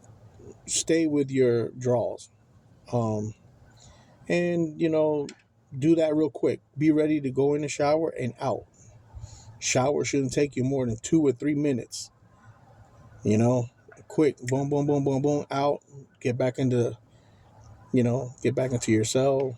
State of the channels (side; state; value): both; identical; correlation 1.00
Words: stay with your drawers. Um, and do that real quick. Be ready to go in the shower and out. Shower shouldn't take you more than 2 or 3 minutes. Quick, boom, boom, boom, boom, boom, out. Get back into, get back into your cell.